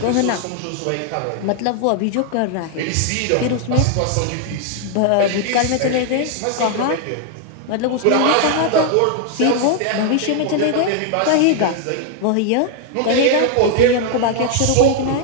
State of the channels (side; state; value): both; different; correlation 0.00